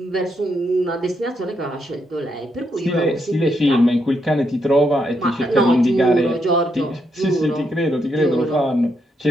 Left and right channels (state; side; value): normal; both; correlation 0.79